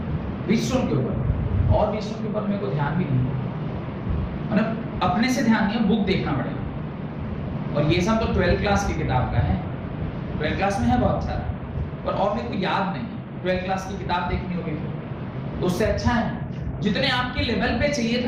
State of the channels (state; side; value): identical; both; correlation 1.00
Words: व्हीटस्टोन के ऊपर और व्हीटस्टोन के ऊपर मेरे को ध्यान भी नहीं है, मतलब अपने से ध्यान नहीं है, बुक देखना पड़ेगा। और ये सब तो 12th क्लास की किताब का है, 12th क्लास में है बहुत सारा, और मेरे को याद नहीं है। 12th क्लास की किताब देखनी होगी तो उससे अच्छा है जितने आपके लेवल पे चाहिए